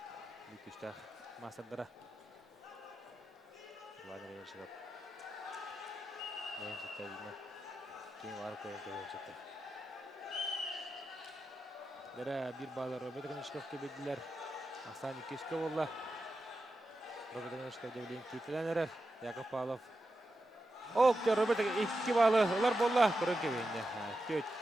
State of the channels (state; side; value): normal; both; correlation 0.89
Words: Бүкүштах масадара. Иван Ганешков. Несеттерине ким var koyun koyacaklar. Dere bir bağlar Robert Ганешков kebediler. Aslan 200 bolla. Robert Ганешков devleyin titilenler. Yakov Pavlov. Ok Robert 2 bağlı. Olar bolla. Koyun kebediler. 4.